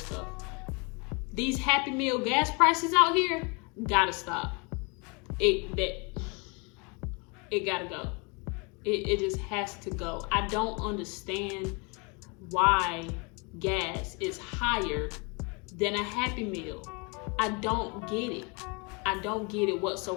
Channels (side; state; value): right; quieter; 31.4 dB